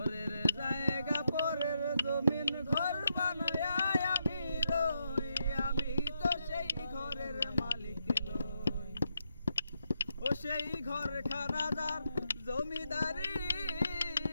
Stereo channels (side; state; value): both; inverted; correlation -0.82